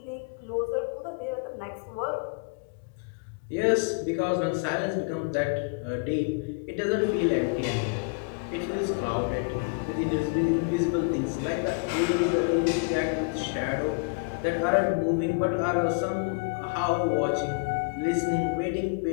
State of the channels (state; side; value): quieter; right; 31.9 dB